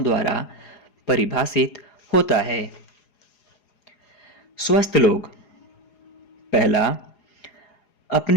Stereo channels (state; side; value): late; right; 4.8 ms